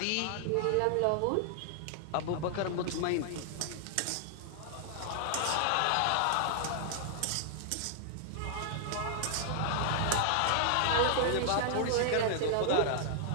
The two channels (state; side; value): different; both; correlation -0.01